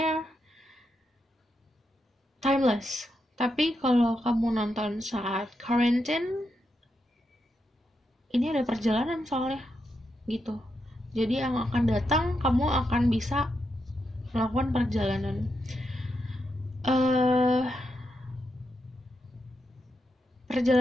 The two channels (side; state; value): both; normal; correlation 0.84